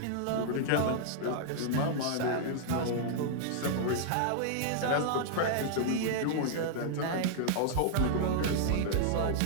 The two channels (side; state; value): both; different; correlation -0.01